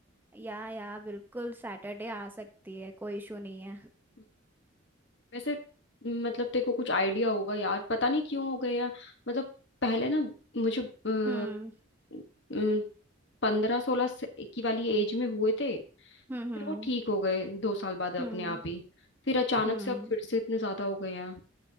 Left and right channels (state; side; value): normal; both; correlation 0.11